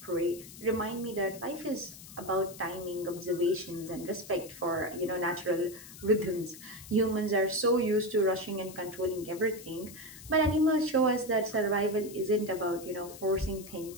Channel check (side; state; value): left; noise; hiss, 16 dB below the sound